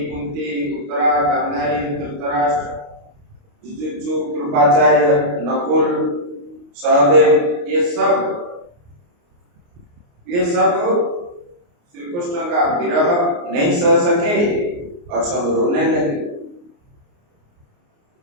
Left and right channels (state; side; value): late; left; 29 ms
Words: कुंती, उत्तरा, गांधारी, धृतराष्ट्र, जुजुत्सु, कृपाचार्य, नकुल, सहदेव, ये सब श्री कृष्ण का विरह नहीं सह सके और सब रोने लगे।